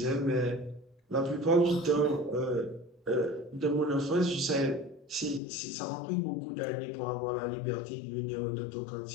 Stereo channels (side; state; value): right; drops out; at 5.4 s